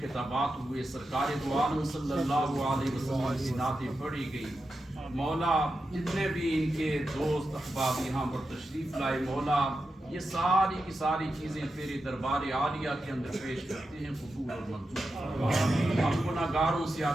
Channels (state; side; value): normal; both; correlation 0.89